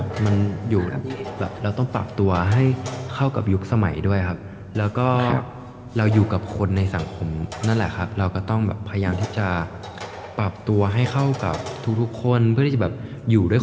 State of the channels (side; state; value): both; identical; correlation 1.00